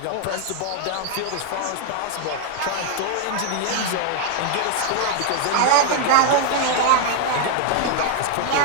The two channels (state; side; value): different; both; correlation 0.00